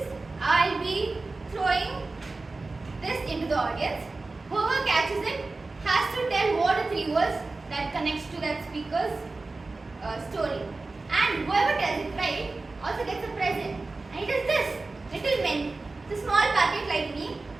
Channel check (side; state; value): left; quieter; 3.5 dB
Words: I'll be throwing this into the audience. Whoever catches it has to tell what are 3 words that connects to that speaker's story. And whoever tells it right also gets a present. And it is this little mint. It's a small packet like me,